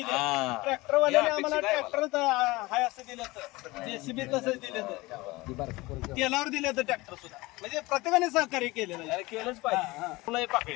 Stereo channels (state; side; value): quieter; right; 21.5 dB